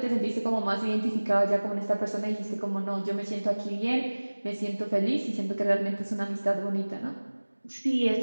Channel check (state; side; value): inverted; both; correlation -1.00